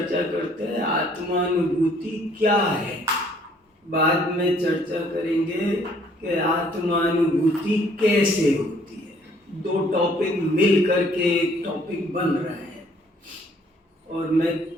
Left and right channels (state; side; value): normal; both; correlation 0.61